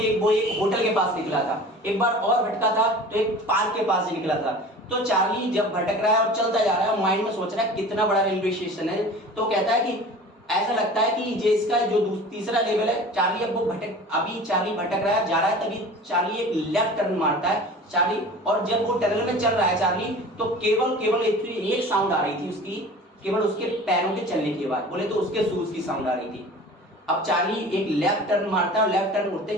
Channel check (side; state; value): both; normal; correlation 0.40